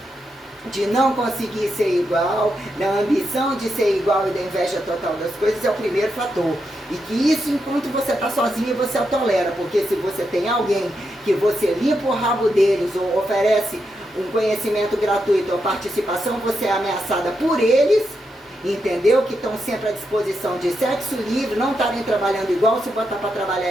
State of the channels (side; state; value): both; normal; correlation 0.84